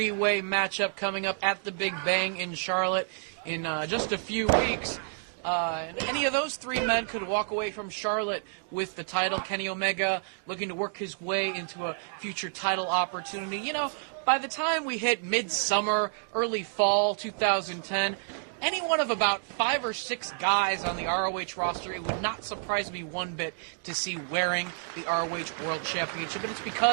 matchup coming up at the Big Bang in Charlotte in just a few weeks. And any of those three men could walk away from Charlotte with the title. Kenny Omega looking to work his way into a future title opportunity. You know, by the time we hit midsummer, early fall 2010, any one of about 5 or 6 guys on the ROH roster, it would not surprise me one bit to see wearing the ROH World Championship. And it's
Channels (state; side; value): silent; left; digital silence